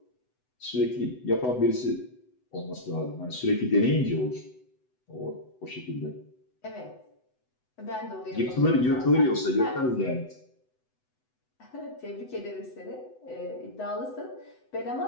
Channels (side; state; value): right; late; 8.0 ms